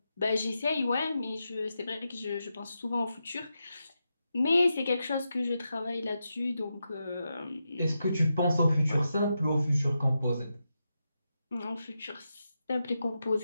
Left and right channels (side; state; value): both; inverted; correlation -0.87